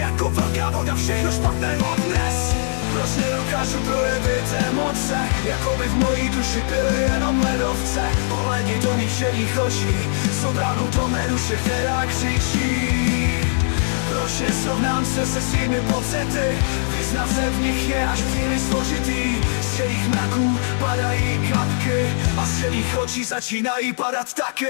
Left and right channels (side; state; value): right; silent; 65 dB below the other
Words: velká voda všechno špatné odnes. Proč nedokážu projevit emoce, jako by v mojí duši byly jenom ledovce? Pohledni do mých šedých očí, jsou bránou do mé duše, která křičí. Proč nesrovnám se se svými pocity? Vyznat se v nich je až příliš složitý. Z šedých mraků padají kapky a z šedých očí začínají padat